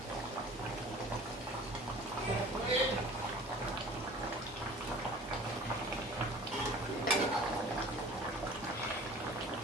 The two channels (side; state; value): both; normal; correlation 0.45